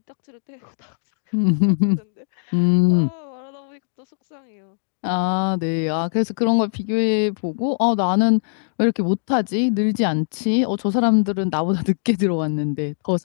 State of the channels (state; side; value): silent; right; digital silence